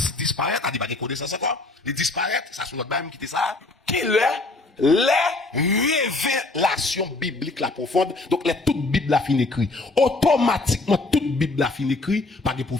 disparaît, c'est-à-dire, pas de connaissance encore, les disparaître, ça sur notre Bible qui était ça, qui est les révélations bibliques la profonde. Donc, toute Bible a fini écrit. Automatiquement, toute Bible a fini écrit. Pas de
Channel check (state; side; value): quieter; right; 3.2 dB